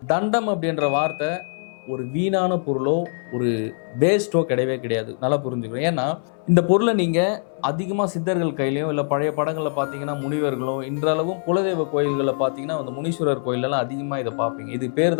தண்டம் அப்படின்ற வார்த்தை ஒரு வீணான பொருளோ ஒரு வேஸ்ட்டோ கிடையவே கிடையாது. நல்லா புரிஞ்சுக்கணும். ஏன்னா இந்த பொருளை நீங்க அதிகமா சித்தர்கள் கையிலயும் இல்ல பழைய படங்கள்ல பார்த்தீங்கன்னா முனிவர்களும் இன்றளவும் குலதெய்வ கோயில்களில் பார்த்தீங்கன்னா அந்த முனீஸ்வரர் கோயிலெல்லாம் அதிகமா இதை பார்ப்பீங்க. இது பேர்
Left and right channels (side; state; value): right; silent; 61 dB below the other